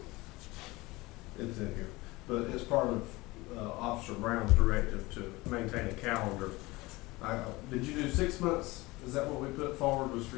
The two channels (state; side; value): quieter; right; 21.5 dB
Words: It's in here, but it's part of Officer Brown's directive to maintain a calendar. Did you do 6 months? Is that what we put forward, was for